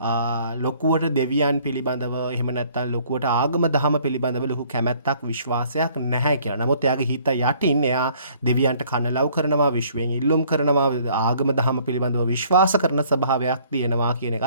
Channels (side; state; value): both; inverted; correlation -0.59